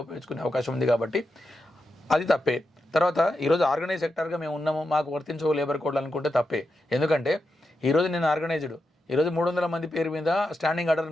ఉపయోగించుకునే అవకాశం ఉంది. కాబట్టి అది తప్పే. తర్వాత ఈరోజు ఆర్గనైజ్ సెక్టర్గా మేము ఉన్నాము, మాకు వర్తించవు లేబర్ కోడ్లు అనుకుంటే తప్పే. ఎందుకంటే ఈరోజు నేను ఆర్గనైజ్డ్, ఈరోజు 300 మంది పేరు మీద స్టాండింగ్ ఆర్డర్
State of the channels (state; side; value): normal; both; correlation 0.87